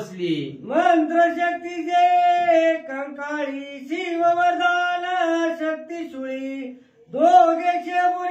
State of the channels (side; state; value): both; identical; correlation 1.00